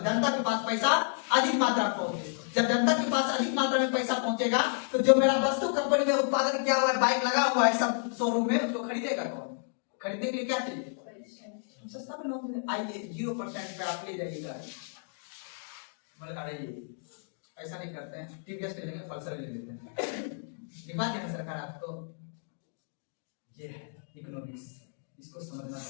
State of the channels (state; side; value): silent; right; digital silence